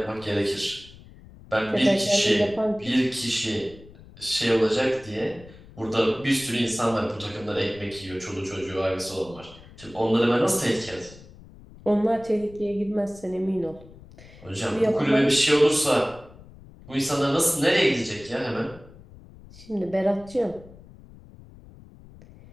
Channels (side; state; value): left; noise; rumble, 21 dB below the sound